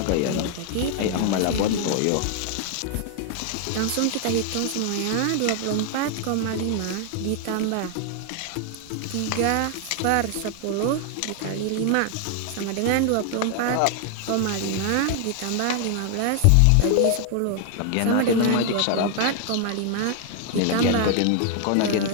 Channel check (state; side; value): different; both; correlation 0.00